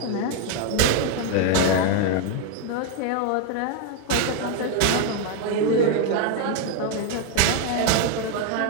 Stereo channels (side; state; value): both; different; correlation 0.01